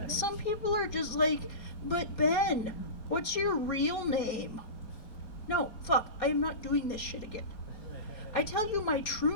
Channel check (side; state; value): right; late; 4.2 ms